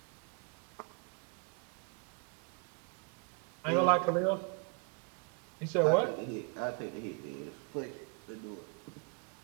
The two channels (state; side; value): quieter; left; 35.0 dB